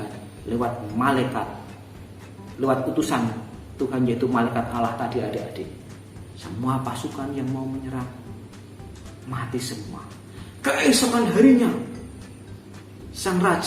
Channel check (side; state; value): both; identical; correlation 1.00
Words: lewat malaikat, lewat utusan Tuhan, yaitu malaikat Allah tadi, adik-adik. Semua pasukan yang mau menyerang mati semua. Keesokan harinya sang